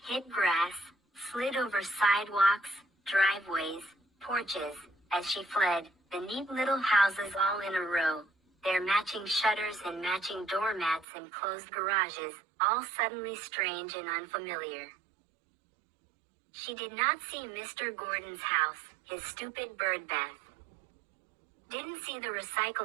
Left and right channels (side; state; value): left; drops out; at 11.1 s